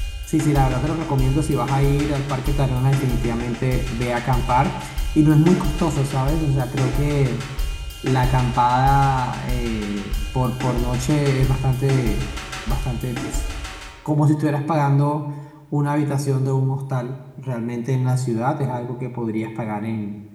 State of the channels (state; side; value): identical; both; correlation 1.00